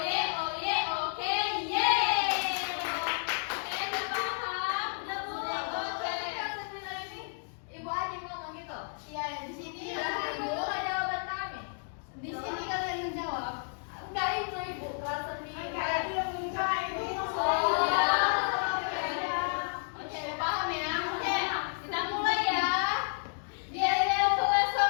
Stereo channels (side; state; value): right; silent; 57 dB below the other